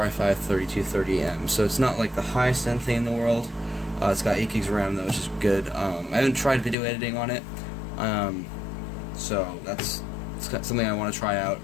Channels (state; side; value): drops out; right; at 6.8 s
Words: i5-3230M. So it's not like the highest end thing in the world. It's got 8 gigs of RAM though, which is good. I haven't tried video editing on it, so it's something I want to try out.